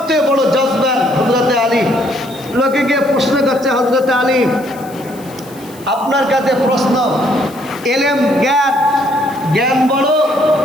বড় জজবান হযরতে আলী। লোকে গিয়ে প্রশ্ন করছে, হযরতে আলী, আপনার কাছে প্রশ্ন, এলেম জ্ঞান, জ্ঞান বড়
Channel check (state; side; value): noise; left; hiss, 21 dB below the sound